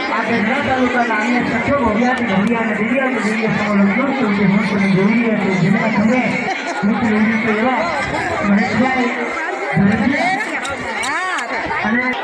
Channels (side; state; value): both; identical; correlation 1.00